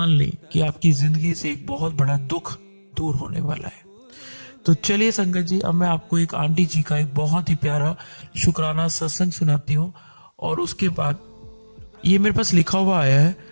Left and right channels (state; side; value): inverted; both; correlation -1.00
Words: लें कि आपकी जिंदगी से एक बहुत बड़ा दुख दूर होने वाला है। तो चलिए संगत जी, अब मैं आपको एक आंटी जी का एक बहुत ही प्यारा शुक्राना सत्संग सुनाती हूँ, और उसके बाद ये मेरे पास लिखा हुआ आया है,